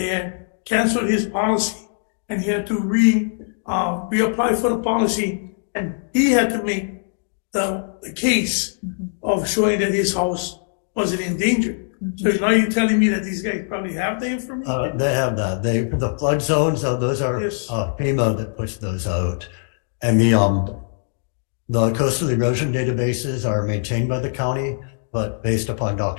had canceled his policy, and he had to reapply for the policy, and he had to make the case of showing that his house wasn't in danger. So now you're telling me that these guys probably have the information? They have that. The flood zones, those are Yes. FEMA that puts those out. And the coastal erosion databases are maintained by the county, but based upon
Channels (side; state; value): right; silent; digital silence